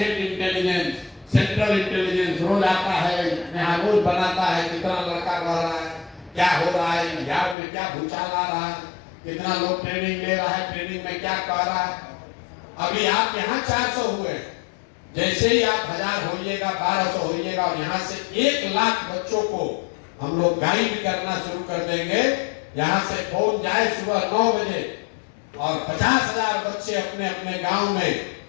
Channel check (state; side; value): drops out; right; at 7.6 s